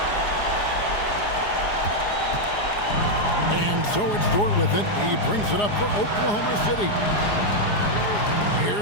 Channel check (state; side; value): late; right; 4.8 ms